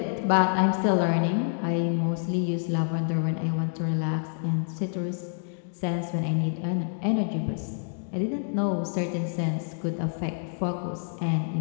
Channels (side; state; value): right; silent; 60 dB below the other